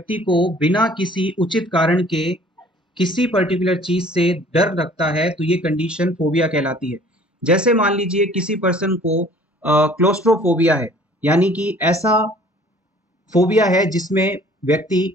को बिना किसी उचित कारण के किसी पर्टिकुलर चीज से डर लगता है तो ये कंडीशन फोबिया कहलाती है। जैसे मान लीजिए किसी पर्सन को क्लोस्ट्रोफोबिया है, यानी कि ऐसा फोबिया है जिसमें व्यक्ति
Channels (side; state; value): both; normal; correlation 0.53